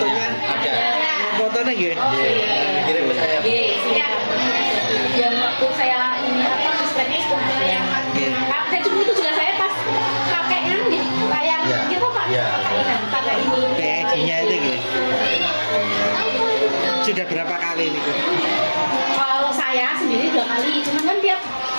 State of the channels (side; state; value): both; inverted; correlation -1.00